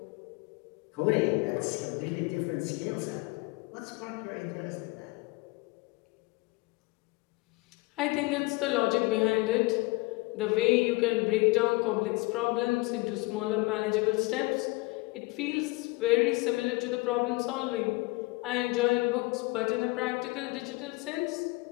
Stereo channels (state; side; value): quieter; right; 24.2 dB